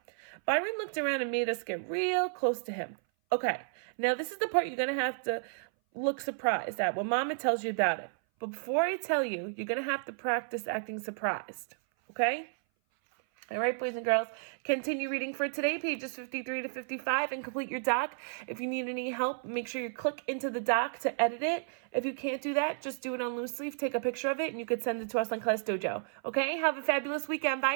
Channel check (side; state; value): left; silent; 56 dB below the other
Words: Byron looked around and made us get real close to him. "Okay, now this is the part you're going to have to look surprised at when Mama tells you about it. But before I tell you, you're going to have to practice acting surprised. Okay? All right, boys and girls, continue reading for today, pages 53 to 55, and complete your doc. If you need any help, make sure you click into the doc to edit it. If you can't do that, just do it on loose leaf, take a picture of it, and you could send it to us on Class Dojo. Okay? Have a fabulous weekend. Bye,